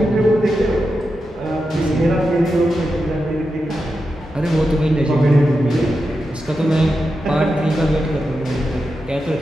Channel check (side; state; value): both; normal; correlation 0.89